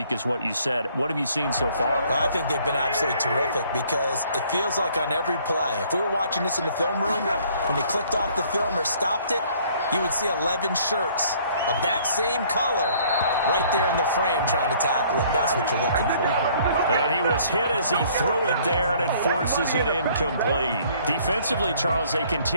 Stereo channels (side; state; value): both; inverted; correlation -0.59